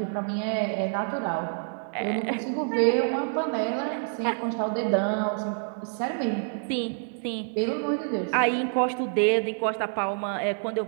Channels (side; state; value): left; silent; 58 dB below the other